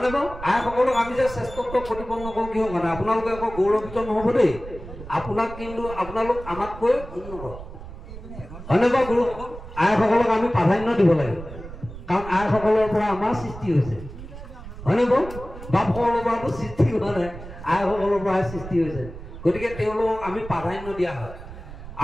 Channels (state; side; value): noise; right; rumble, 13 dB below the sound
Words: বাৰু? আইসকলক আমি যে শ্ৰেষ্ঠত্ব প্ৰতিপন্ন কৰোঁ কিহৰ কাৰণে? আপোনালোকে আকৌ গৌৰৱিত নহ'ব দেই, আপোনালোক আমাতকৈ উন্নত, হয়নে বাৰু? গুৰুসকল আইসকলক আমি প্ৰাধান্য দিব লাগে, কাৰণ আইসকলৰ পৰা আমাৰ সৃষ্টি হৈছে, হয়নে বাৰু? বাপসকলৰ পৰাতো সৃষ্টি হোৱা নাই, আইসকলৰ পৰাহে সৃষ্টি হৈছে। গতিকে তেওঁলোকক আমি প্ৰাধান্য দিয়া হয়।